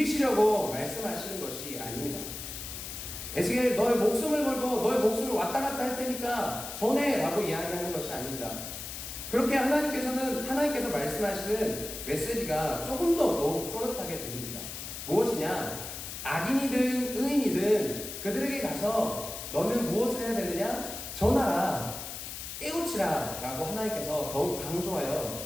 말씀하시는 것이 아닙니다. 에스겔, 너의 목숨을 걸고 너의 목숨을 왔다 갔다 할 테니까 전해 라고 이야기하는 것이 아닙니다. 그렇게 하나님께서 말씀하시는 메시지가 조금 더 더욱 또렷하게 들립니다. 무엇이냐? 악인이든 의인이든 그들에게 가서 너는 무엇을 해야 되느냐? 전하라, 깨우치라 라고 하나님께서 더욱 강조하여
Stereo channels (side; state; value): left; noise; hiss, 8 dB below the sound